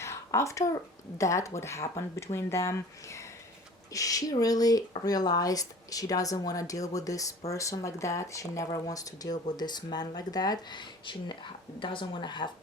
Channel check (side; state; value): both; normal; correlation 0.44